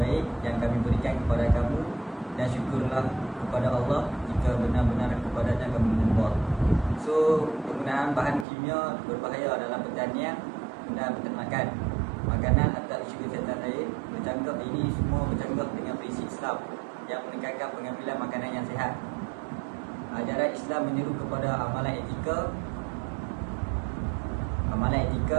yang kami berikan kepada kamu dan syukurlah kepada Allah jika benar-benar kepadanya kamu menyembah. So penggunaan bahan kimia berbahaya dalam pertanian dan peternakan, makanan atau isu kesihatan lain bercanggah. Ini semua bercanggah dengan prinsip Islam yang menekankan pengambilan makanan yang sihat. Ajaran Islam menyeru kepada amalan etika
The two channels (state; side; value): drops out; left; at 8.5 s